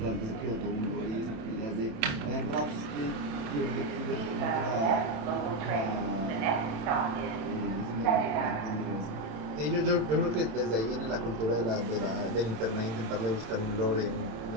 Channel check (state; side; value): late; left; 27 ms